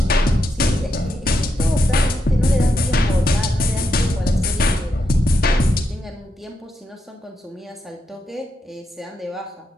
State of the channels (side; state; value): both; normal; correlation 0.83